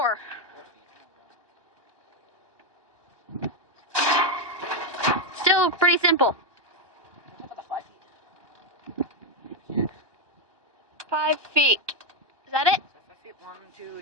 4 feet. Still pretty simple. How about the 5 feet? 5 feet. Is that it? 5 feet. 1, 2,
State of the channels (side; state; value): left; late; 1.2 ms